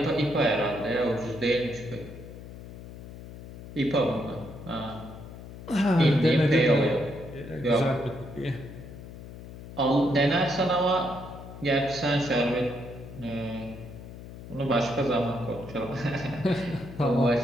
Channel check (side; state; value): left; noise; hum, 14 dB below the sound